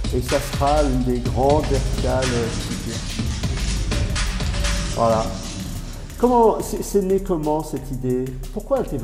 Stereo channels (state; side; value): identical; both; correlation 1.00